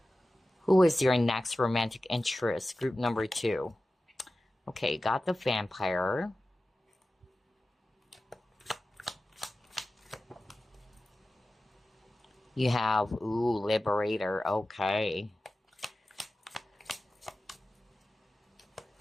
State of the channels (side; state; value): both; normal; correlation 0.95